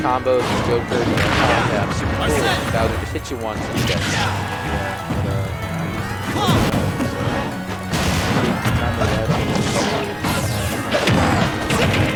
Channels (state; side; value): identical; both; correlation 1.00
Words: combos, Joker, yeah, super cool. Bowser just hit you once and you get it.